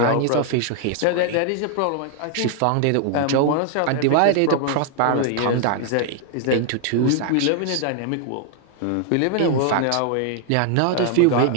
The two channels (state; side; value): different; both; correlation 0.00